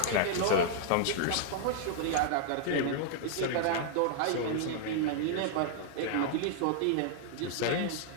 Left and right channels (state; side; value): different; both; correlation 0.00